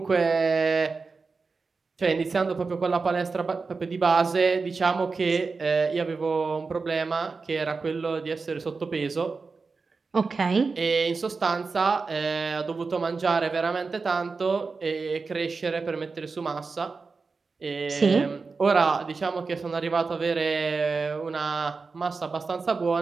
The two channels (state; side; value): quieter; left; 4.4 dB